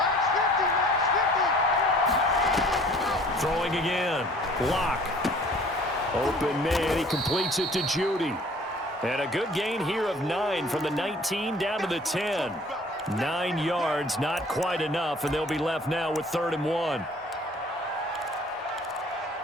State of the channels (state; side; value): normal; both; correlation 0.52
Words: Throwing again. Locke. Open man. He completes it to Judy. And a good gain here of 9 from the 19 down to the 10. 9 yards, not quite enough, and they'll be left now with 3rd and 1.